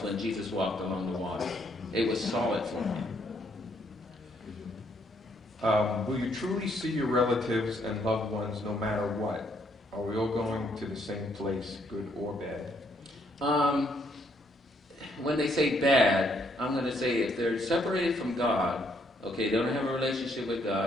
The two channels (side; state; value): both; normal; correlation 0.71